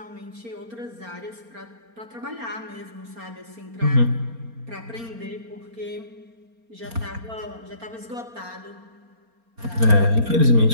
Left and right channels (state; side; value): late; left; 4.3 ms